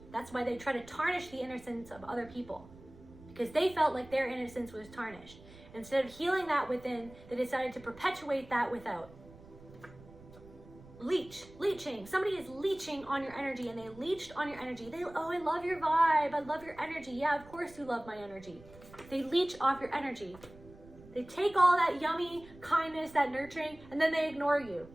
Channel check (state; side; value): noise; right; rumble, 20 dB below the sound